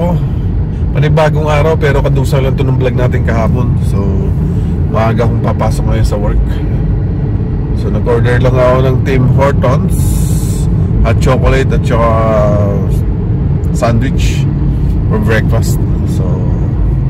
Panibagong araw pero kadusa lang ito ng vlog natin kahapon. So maaga akong papasok ngayon sa work. So nag-order lang ako ng Tim Hortons, hot chocolate at saka sandwich for breakfast. So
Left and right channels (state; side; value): identical; both; correlation 1.00